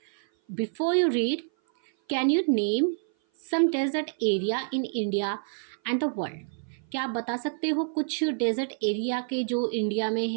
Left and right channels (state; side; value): silent; left; 56 dB below the other